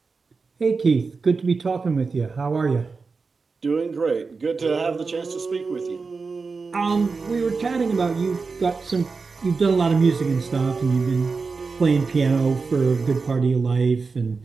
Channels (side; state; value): left; quieter; 4.5 dB